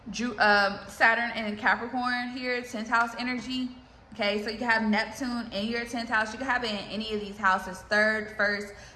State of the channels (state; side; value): identical; both; correlation 1.00